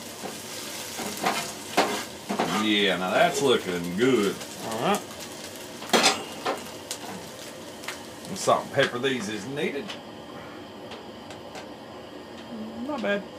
Yeah, now that's looking good. All right. And salt and pepper these is needed. Not bad.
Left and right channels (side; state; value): both; identical; correlation 1.00